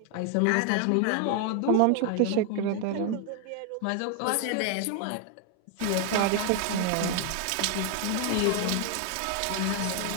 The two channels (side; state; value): both; different; correlation 0.00